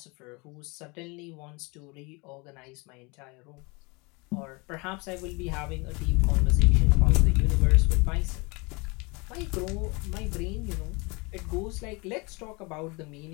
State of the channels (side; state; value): right; quieter; 27.8 dB